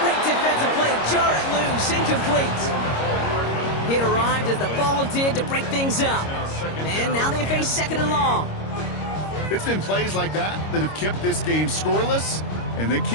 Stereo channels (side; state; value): right; late; 26 ms